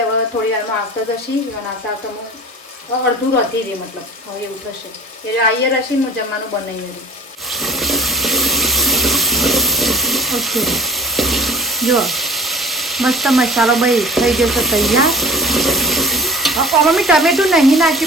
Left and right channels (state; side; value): normal; both; correlation 0.41